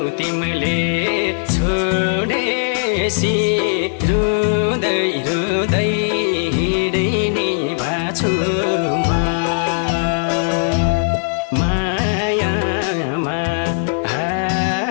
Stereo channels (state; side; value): silent; right; digital silence